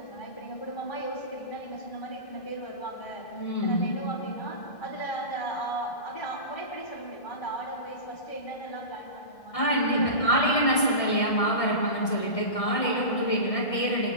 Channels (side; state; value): right; late; 1.6 ms